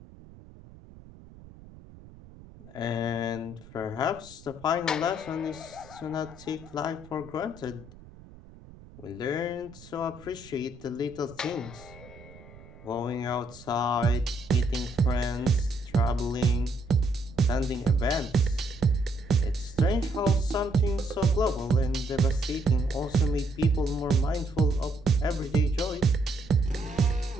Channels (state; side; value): noise; right; rumble, 20 dB below the sound